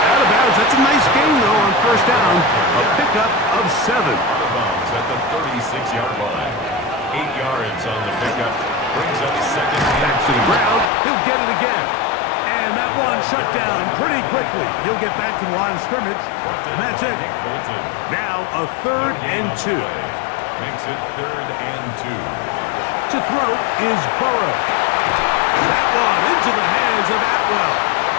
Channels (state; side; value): drops out; right; at 10.9 s